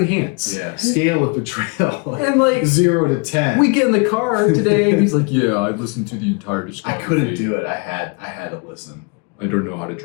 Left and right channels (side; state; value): right; quieter; 33.0 dB